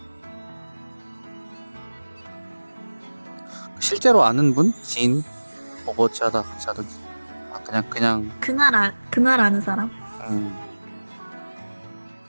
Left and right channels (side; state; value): both; inverted; correlation -1.00